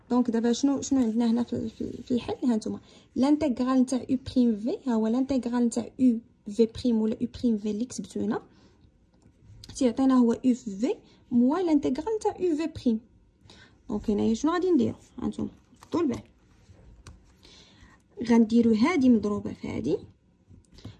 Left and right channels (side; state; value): both; identical; correlation 1.00